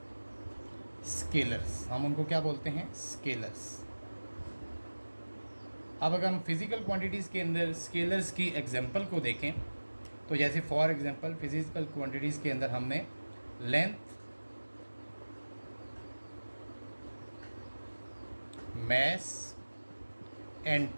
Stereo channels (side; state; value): both; inverted; correlation -1.00